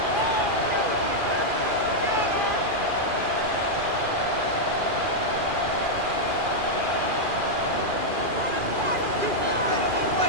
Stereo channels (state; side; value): late; left; 2.4 ms